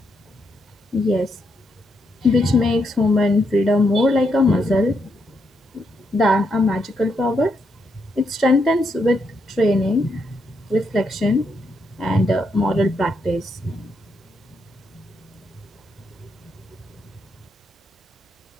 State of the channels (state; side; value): normal; both; correlation 0.79